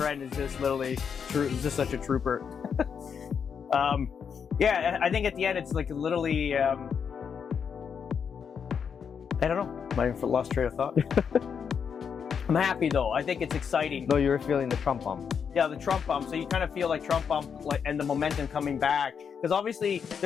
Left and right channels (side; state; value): right; quieter; 6.9 dB